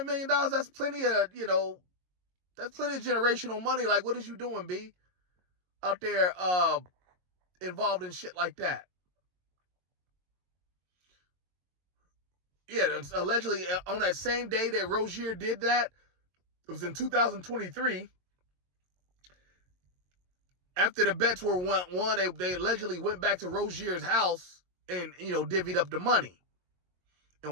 million, that's plenty of, that's plenty of generational money. Like, what is you doing, B? Out there involved in shit like that. Yeah, allegedly on that same day that Rozier did that, it was in 2023. After the bets were won, they allegedly went back to Rozier's house and, divvied up the money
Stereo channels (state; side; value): late; left; 22 ms